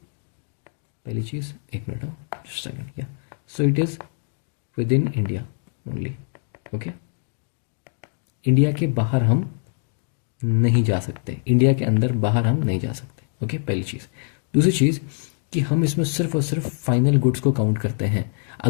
पहली चीज़, एक मिनट, जस्ट सेकंड, या so it is with in India only. Okay, India के बाहर हम नहीं जा सकते, इंडिया के अंदर बाहर हम नहीं जा सकते. ओके, पहली चीज़. दूसरी चीज़ कि हम इसमें सिर्फ और सिर्फ फाइनल गुड्स को काउंट करते हैं.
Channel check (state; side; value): silent; right; 62 dB below the other